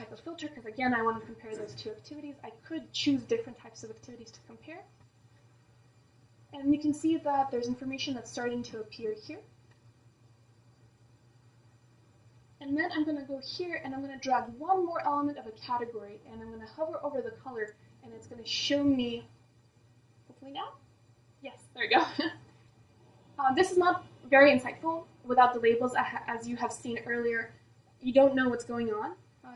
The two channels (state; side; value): identical; both; correlation 1.00